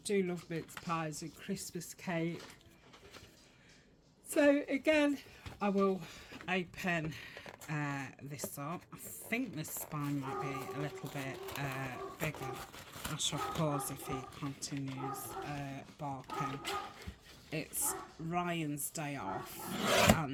love mince pies and Christmas cake. So again, I will open this up. I think this spine might be a little bit bigger. I shall pause if he continues barking. It's Ryan's day off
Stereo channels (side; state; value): both; identical; correlation 1.00